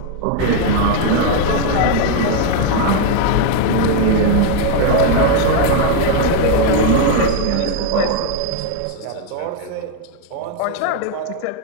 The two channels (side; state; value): both; different; correlation 0.01